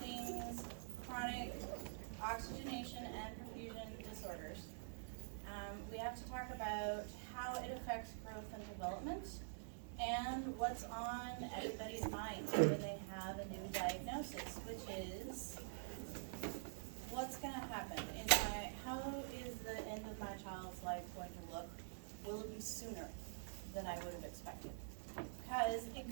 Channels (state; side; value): silent; left; digital silence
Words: chronic oxygenation and perfusion disorders, we have to talk about how it affects growth and development and what's on everybody's mind when they have a new diagnosis, which is what's going to happen? How is the end of my child's life going to look? Will it be sooner than I would have expected? Because it